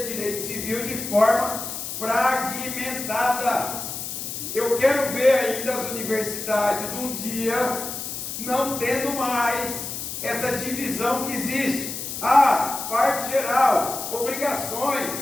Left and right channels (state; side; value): noise; left; hiss, 6 dB below the sound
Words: direito civil de forma fragmentada. Eu quero ver ainda as universidades um dia não tendo mais essa divisão que existe. Parte geral, obrigações,